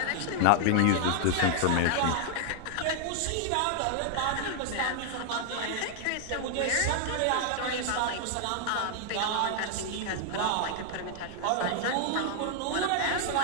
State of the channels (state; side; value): different; both; correlation 0.00